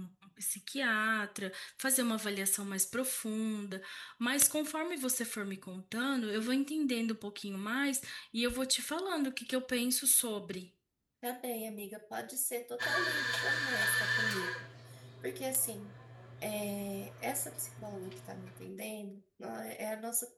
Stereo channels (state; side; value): identical; both; correlation 1.00